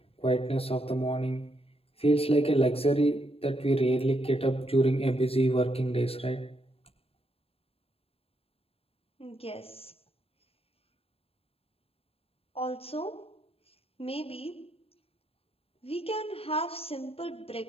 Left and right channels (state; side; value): late; right; 0.28 ms